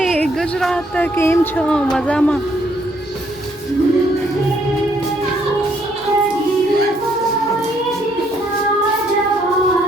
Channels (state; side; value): normal; both; correlation 0.69